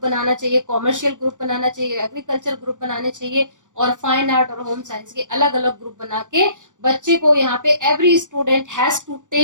बनाना चाहिए, कॉमर्शियल ग्रुप बनाना चाहिए, एग्रीकल्चर ग्रुप बनाने चाहिए, और फाइन आर्ट और होम साइंस के अलग अलग ग्रुप बना के बच्चे को यहाँ पे every student has to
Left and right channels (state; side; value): late; left; 0.86 ms